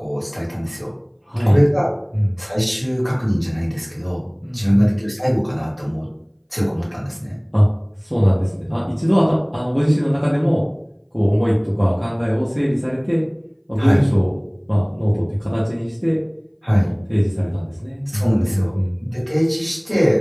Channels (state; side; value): identical; both; correlation 1.00